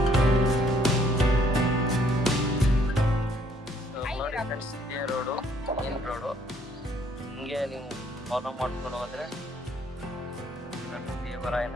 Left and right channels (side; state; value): both; normal; correlation 0.65